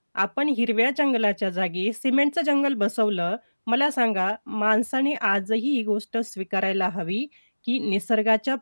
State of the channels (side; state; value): both; inverted; correlation -1.00